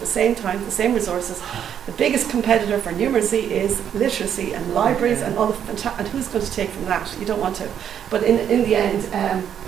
same time, the same resources? The biggest competitor for numeracy is literacy and libraries and all the and who's going to take from that? You don't want to. But in the end,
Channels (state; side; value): quieter; left; 9.0 dB